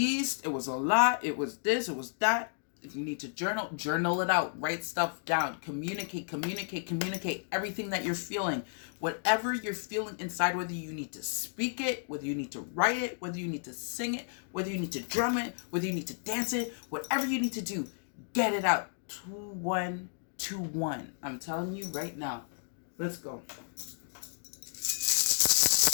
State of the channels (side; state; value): right; silent; digital silence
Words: It was a lot. It was this. It was that. If you need to journal it out. Write stuff down. Communicate everything that you're feeling. Whatever you're feeling inside, whether you need to speak it, whether you need to write it, whether you need to sing it, whether you need to drum it, whether you need to dance it, whatever you need to do, get it out. 2121. I'm telling you right now. Let's go.